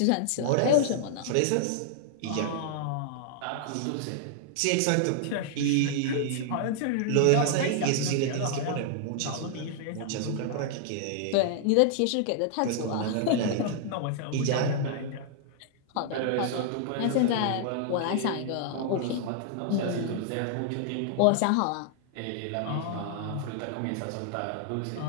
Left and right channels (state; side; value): different; both; correlation -0.01